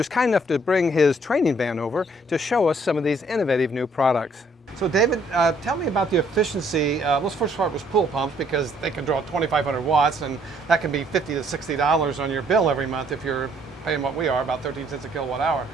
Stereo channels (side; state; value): both; normal; correlation 0.65